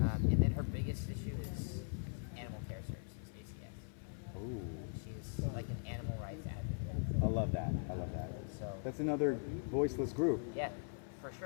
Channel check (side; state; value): right; silent; 51 dB below the other